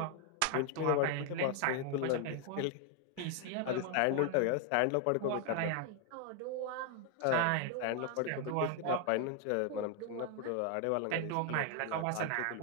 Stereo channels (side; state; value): both; different; correlation 0.00